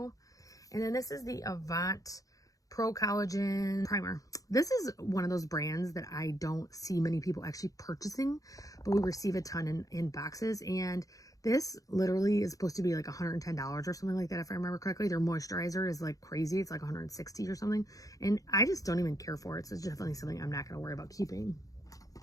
And then this is the Avant Pro Collagen Primer. This is one of those brands that I don't see many people actually purchasing, but we receive a ton in boxes. And this literally is supposed to be like $110 or something like that, if I remember correctly. Their moisturizer is like crazy. It's like $160 or something. And I just don't even care for it. So it's definitely something I'm not going to worry about keeping.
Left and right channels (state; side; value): late; right; 0.17 ms